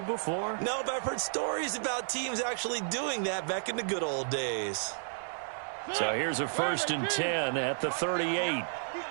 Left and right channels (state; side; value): silent; left; 56 dB below the other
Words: before? No, but I've heard stories about teams actually doing that back in the good old days. So here's a 1st and 10 at the 38.